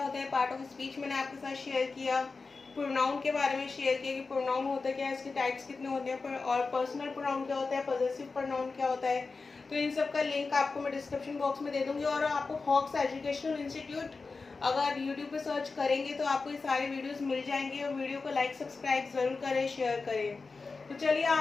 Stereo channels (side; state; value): right; quieter; 4.2 dB